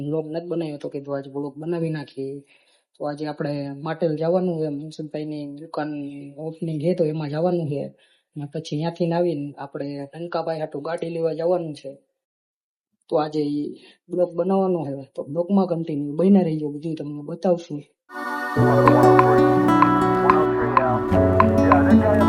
બ્લોગ નથી બનાવ્યો તો કીધું આજે બ્લોગ બનાવી નાખીએ. તો આજે આપણે માટેલ જવાનું છે, મનસુખભાઈની દુકાન ઓપનિંગ છે તો એમાં જવાનું છે. અને પછી ત્યાંથી આવીને આપણે ટંકાભાઈ હાટું ગાડી લેવા જવાનું છે. તો આજે બ્લોગ બનાવવાનો છે, તો બ્લોગમાં કન્ટિન્યુ બન્યા રહીજો, બધું તમને બતાવશું.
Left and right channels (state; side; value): identical; both; correlation 1.00